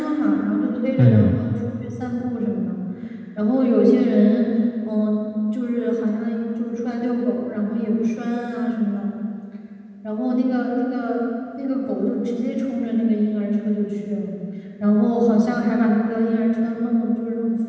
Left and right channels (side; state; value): both; identical; correlation 1.00